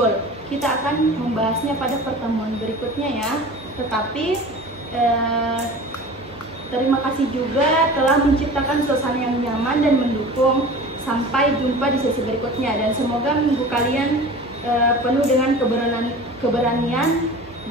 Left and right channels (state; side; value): normal; both; correlation 0.38